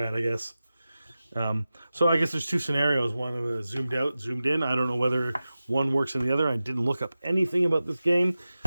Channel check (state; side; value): inverted; both; correlation -0.95